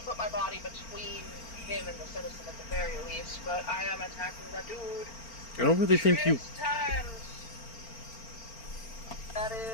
to put my body between him and the citizen at the very least, but I am attacking the dude. I don't really think you... 6 times. That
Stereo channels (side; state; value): right; late; 4.4 ms